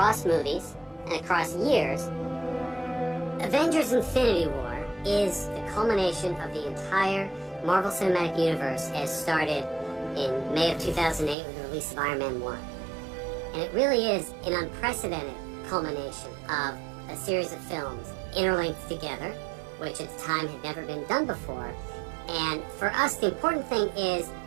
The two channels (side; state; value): left; drops out; at 11.4 s